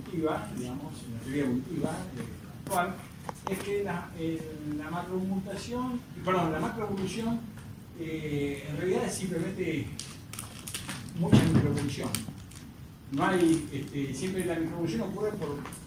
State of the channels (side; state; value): both; identical; correlation 1.00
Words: digamos, en la teoría evolutiva actual, es que la macromutación, perdón, la macroevolución en realidad es simplemente mucha microevolución. No hay, siempre la microevolución ocurre por